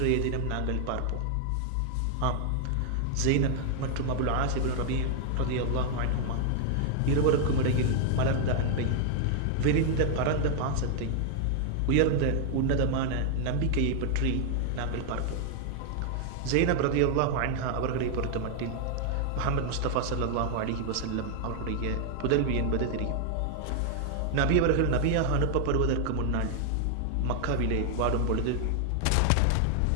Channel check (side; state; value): both; different; correlation 0.00